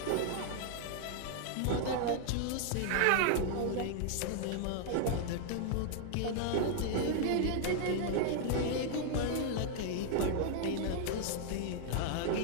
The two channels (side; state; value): both; different; correlation 0.00